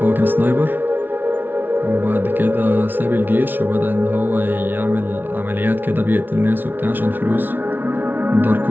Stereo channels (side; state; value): left; late; 0.093 ms